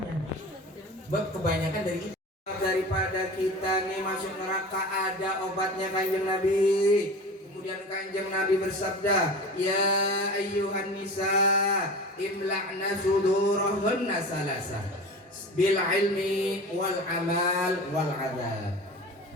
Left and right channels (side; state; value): both; normal; correlation 0.34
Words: Sebab kebanyakan dari itu. Daripada kita nih masuk neraka ada obatnya Kanjeng Nabi. Kemudian Kanjeng Nabi bersabda, ya ayyuhan nisa imla'na sudurahunna salasa bil ilmi wal amal wal adab.